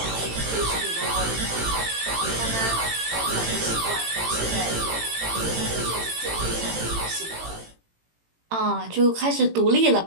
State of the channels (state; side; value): late; left; 18 ms